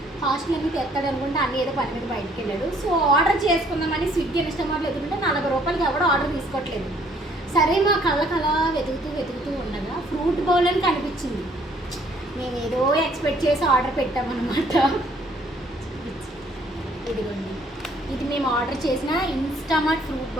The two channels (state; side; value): normal; both; correlation 0.62